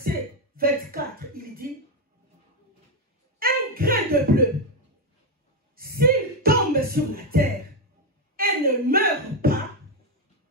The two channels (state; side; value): normal; both; correlation 0.06